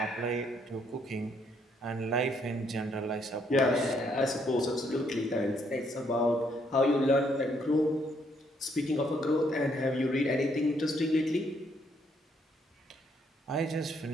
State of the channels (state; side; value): normal; both; correlation 0.71